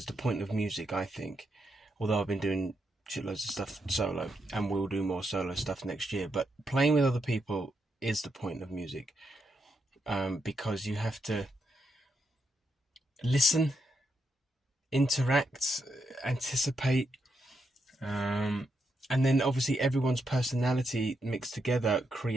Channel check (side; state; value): both; normal; correlation 0.82